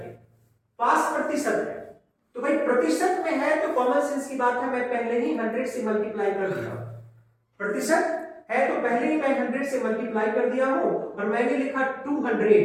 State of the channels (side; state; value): both; identical; correlation 1.00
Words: पास प्रतिशत है तो भाई प्रतिशत में है तो कॉमन सेंस की बात है, मैं पहले ही 100 से मल्टीप्लाई कर दिया। प्रतिशत है तो पहले ही मैं 100 से मल्टीप्लाई कर दिया हूं और मैंने लिखा